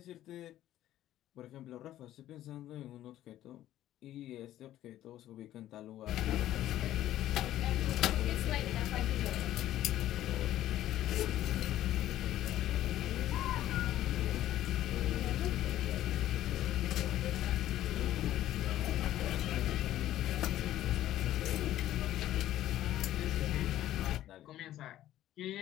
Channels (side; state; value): right; quieter; 13.3 dB